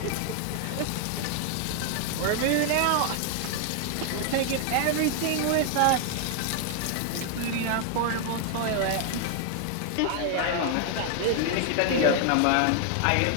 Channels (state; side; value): different; both; correlation 0.00